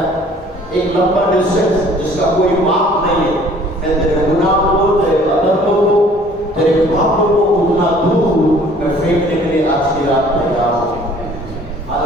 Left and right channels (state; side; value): normal; both; correlation 0.54